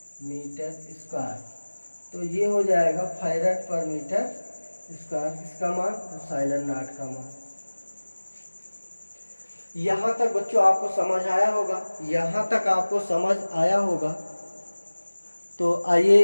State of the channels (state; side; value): inverted; both; correlation -1.00